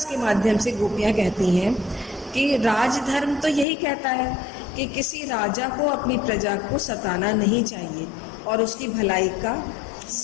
के माध्यम से गोपियां कहती हैं कि राजधर्म तो यही कहता है कि किसी राजा को अपनी प्रजा को सताना नहीं चाहिए और उसकी भलाई का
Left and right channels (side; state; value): right; drops out; at 3.7 s